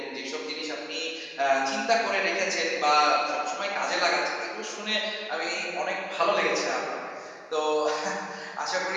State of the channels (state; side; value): identical; both; correlation 1.00